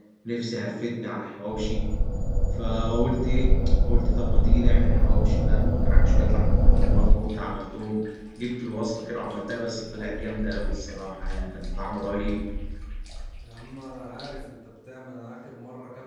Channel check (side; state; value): both; identical; correlation 1.00